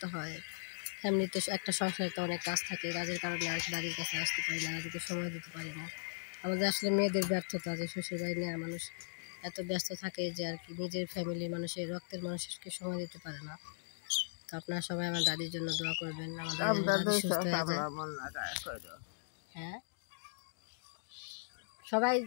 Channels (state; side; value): silent; right; digital silence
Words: হয়, ফ্যামিলিতে একটা সংসারে তো অনেক কাজ থাকে, কাজের কারণে আর কি দাদির কাছে আসতে পারি না, দাদিকে সময় দিতে পারি না। আমাদের আসলে মেয়েদের ব্যর্থতা যে শ্বশুরবাড়ি নিয়ে মানুষ এত ব্যস্ত থাকে যে আর কি নিজের ফ্যামিলির মানুষের, রক্তের মানুষকে সময় দিতে পারে না। তো আপনারা সবাই আমার দাদির জন্য দোয়া করবেন, আমার দাদি সুস্থ হয়ে যায়। হ্যাঁ, সবাই